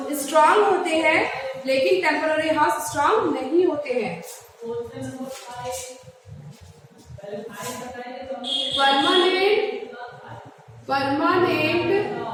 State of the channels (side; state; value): both; identical; correlation 1.00